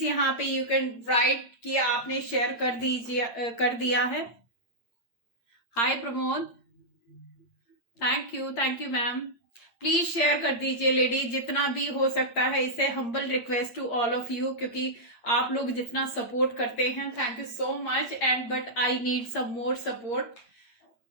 यहाँ पे you can write कि आपने share कर दिया है। Hi Pramod, thank you ma'am. Please share कर दीजिए lady, जितना भी हो सकता है। इसे humble request to all of you, क्योंकि आप लोग जितना सपोर्ट करते हैं, thank you so much, and but I need some more support.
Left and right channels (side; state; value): right; late; 8.8 ms